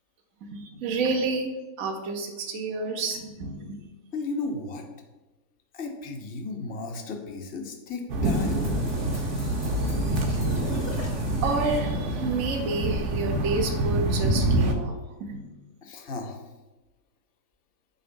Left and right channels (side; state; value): left; late; 3.5 ms